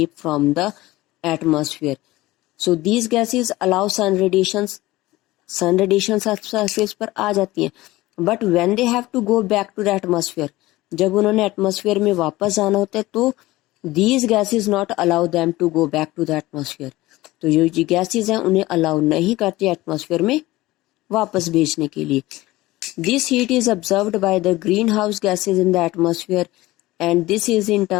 from the atmosphere. So these gases allow sun radiations surface पर आ जाती हैं, but when they have to go back to the atmosphere, जब उन्होंने atmosphere में वापस जाना होता है तो these gases not allow them to go back to the atmosphere. तो जो gases हैं उन्हें allow नहीं करती atmosphere में वापस भेजने के लिए. This heat is absorbed by the greenhouse gases in the atmosphere and this is in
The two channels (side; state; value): right; quieter; 18.5 dB